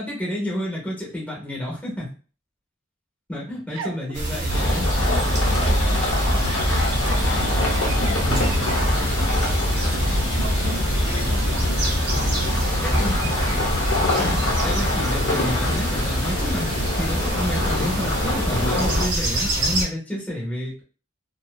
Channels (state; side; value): normal; both; correlation 0.59